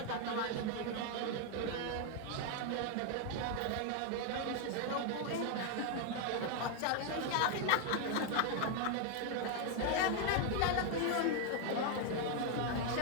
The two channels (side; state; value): both; different; correlation 0.00